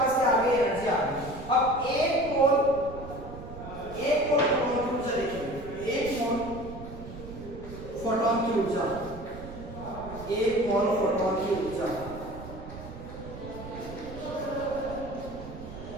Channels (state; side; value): noise; right; rumble, 12 dB below the sound